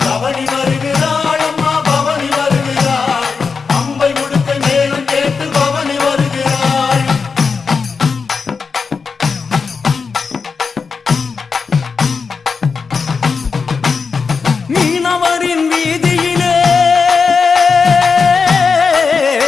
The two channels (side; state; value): right; quieter; 5.2 dB